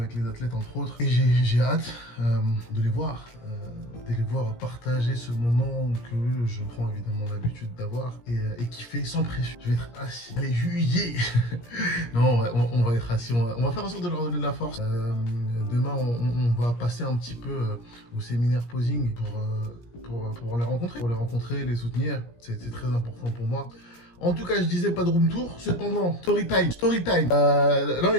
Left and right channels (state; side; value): late; right; 17 ms